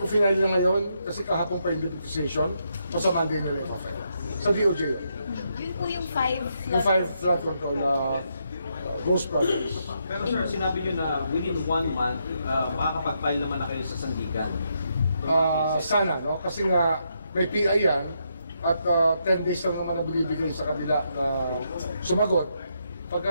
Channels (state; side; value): inverted; both; correlation -0.79